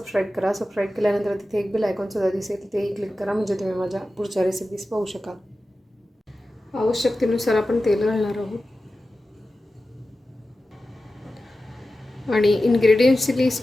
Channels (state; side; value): normal; both; correlation 0.94